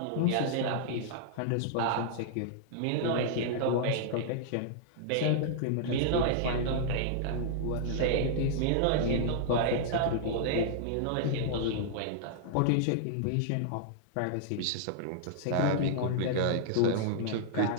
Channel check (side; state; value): both; different; correlation -0.01